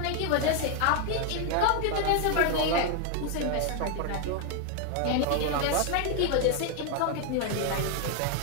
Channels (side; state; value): both; different; correlation 0.01